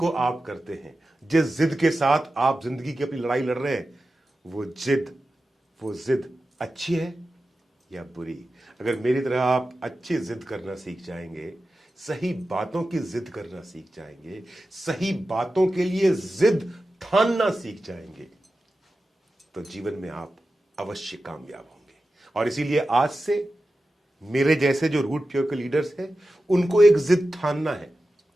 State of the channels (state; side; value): normal; both; correlation 0.93